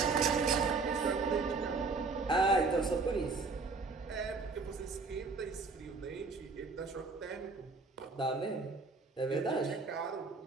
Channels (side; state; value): left; quieter; 4.1 dB